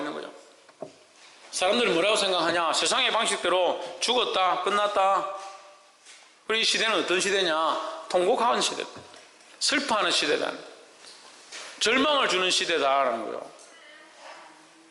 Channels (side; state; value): both; identical; correlation 1.00